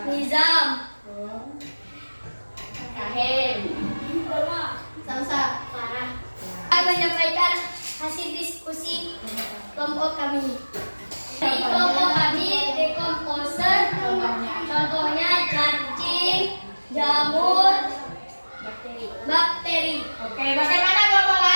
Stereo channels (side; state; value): both; inverted; correlation -1.00